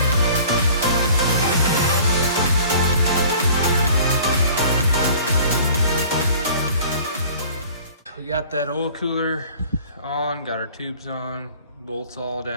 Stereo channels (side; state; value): both; inverted; correlation -0.49